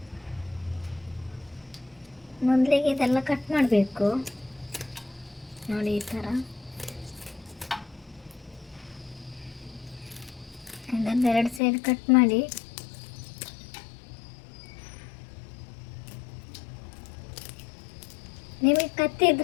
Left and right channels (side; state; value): right; drops out; at 11.6 s